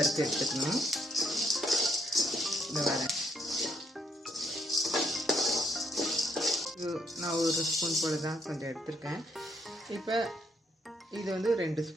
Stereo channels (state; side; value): normal; both; correlation 0.71